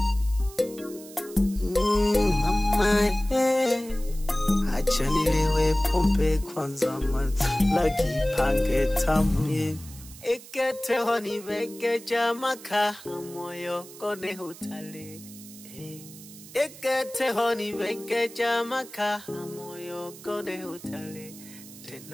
Mama, hey, acha nilewe pombe kwanza lagi pange tamye. Ekete honi beke jamaka moyo kone hutale. Ekete honi beke jamaka moyo kone hutale.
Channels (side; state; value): right; noise; hiss, 18 dB below the sound